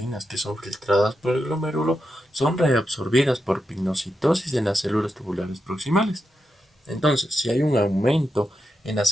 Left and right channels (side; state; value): both; normal; correlation 0.87